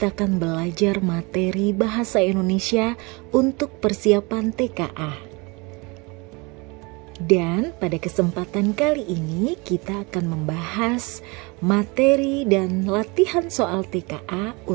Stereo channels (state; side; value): quieter; left; 27.3 dB